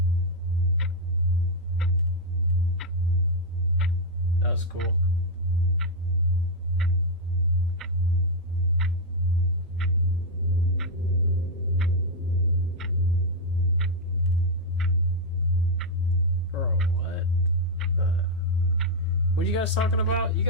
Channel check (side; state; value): both; normal; correlation 0.00